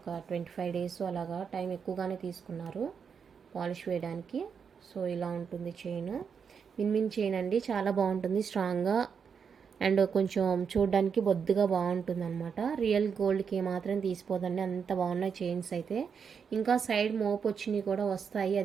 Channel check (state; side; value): quieter; left; 6.5 dB